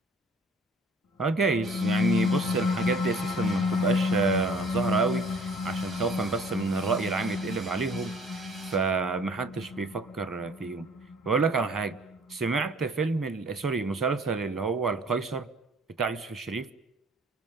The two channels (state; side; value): normal; both; correlation 0.53